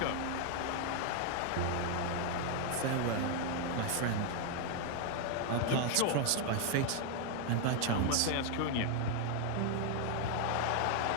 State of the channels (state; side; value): different; both; correlation 0.01